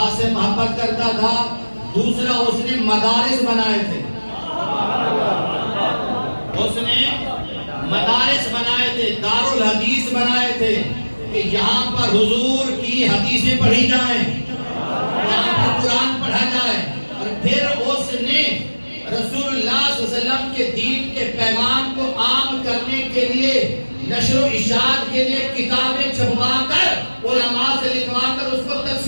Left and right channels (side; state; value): both; inverted; correlation -1.00